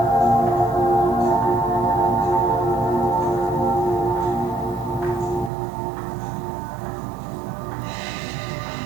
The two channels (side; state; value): left; drops out; at 5.5 s